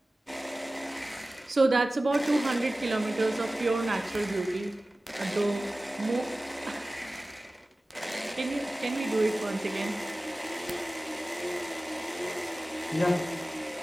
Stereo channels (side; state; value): both; normal; correlation 0.97